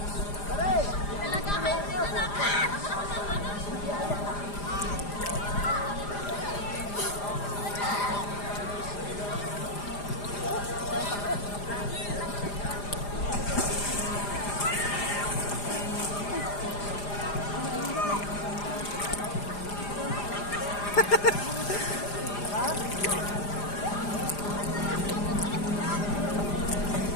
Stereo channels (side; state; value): right; late; 4.9 ms